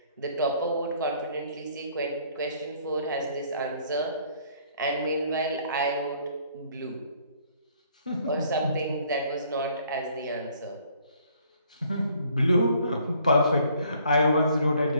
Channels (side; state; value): both; inverted; correlation -0.62